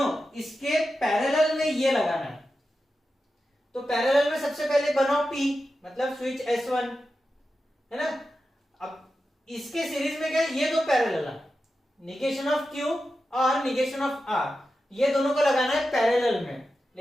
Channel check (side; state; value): both; normal; correlation 0.91